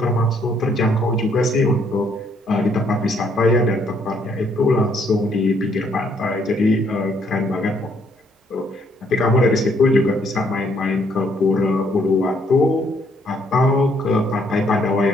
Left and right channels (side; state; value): both; normal; correlation 0.68